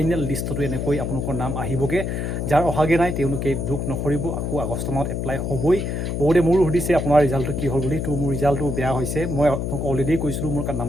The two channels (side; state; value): left; noise; hum, 2 dB below the sound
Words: লিষ্টতো এনেকৈ আপোনালোকৰ নাম আহিবগৈ যাৰ অহাগৈ নাই তেওঁলোকে দুখ নকৰিব আকৌ আগষ্ট মাহত এপ্লাই হ'বই বহুতে মোৰো সুধিছে আপোনাৰ ৰিজাল্টটো কি হ'ল বুলি তো মোৰ ৰিজাল্টটো বেয়া হৈছে মই আপোনালোকক অলৰেডি কৈছিলোঁ মোৰ